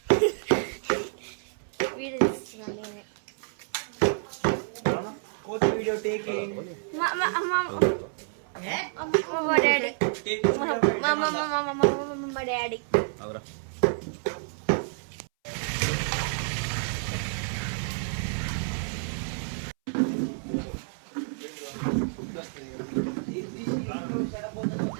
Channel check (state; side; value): silent; left; 59 dB below the other